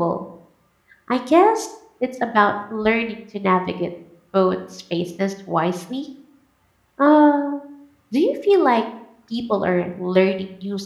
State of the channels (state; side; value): identical; both; correlation 1.00